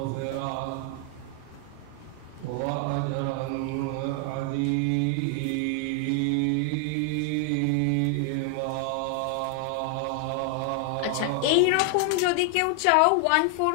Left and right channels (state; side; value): different; both; correlation 0.00